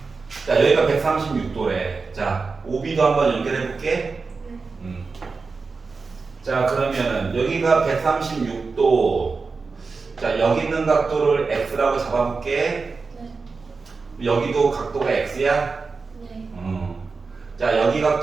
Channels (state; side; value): quieter; left; 4.4 dB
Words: 자, 여기가 136도래. 자, OB도 한번 연결해 볼게. 자, 그러면은 여기가 136도. 자, 여기 있는 각도를 X라고 잡아볼게. 네. 여기도 각도가 X야. 네. 자, 여기